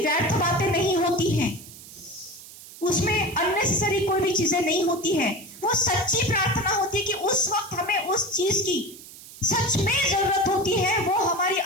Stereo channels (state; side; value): noise; right; hiss, 17 dB below the sound